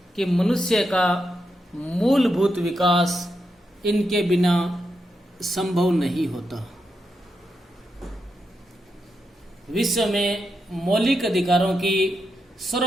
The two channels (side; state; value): both; normal; correlation 0.85